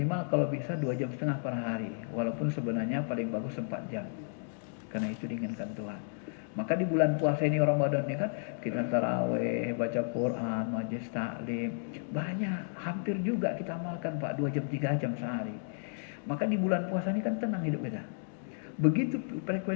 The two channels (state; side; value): silent; right; digital silence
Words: kalau bisa 2,5 jam per hari. Walaupun sebenarnya paling bagus 4 jam. Karena itu diinginkan Tuhan. Maka di bulan puasa ini Ramadan ini kan kita taraweh, baca Quran, majelis taklim. Banyak, hampir juga kita amalkan Pak 2 jam 3 jam sehari. Maka di bulan puasa ini kan tenang hidup kita. Begitu